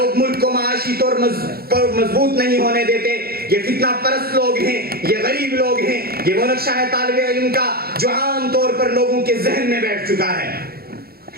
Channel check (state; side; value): late; left; 0.45 ms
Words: ملک کو معاشی طور پر مضبوط نہیں ہونے دیتے، یہ فتنہ پرست لوگ ہیں، یہ غریب لوگ ہیں، یہ وہ نقشہ ہے طالب علم کا جو عام طور پر لوگوں کے ذہن میں بیٹھ چکا ہے۔